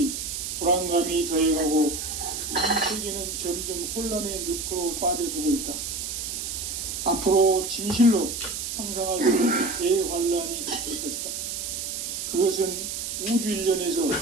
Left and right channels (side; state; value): right; noise; hiss, 4 dB below the sound